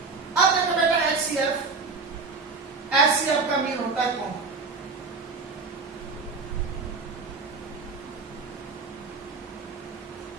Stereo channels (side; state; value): left; quieter; 4.3 dB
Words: अब देखो बेटा एचसीएफ, एचसीएफ का मीन होता है common.